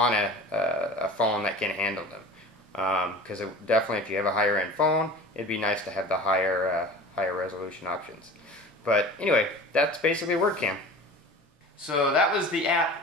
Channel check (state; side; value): normal; both; correlation 0.38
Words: a phone that can handle them. Because definitely, if you have a higher end phone, it'd be nice to have the higher resolution options. But anyway, that's basically WordCam. So that was the app